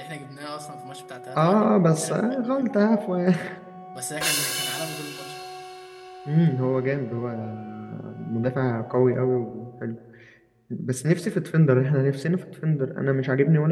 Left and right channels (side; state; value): both; identical; correlation 1.00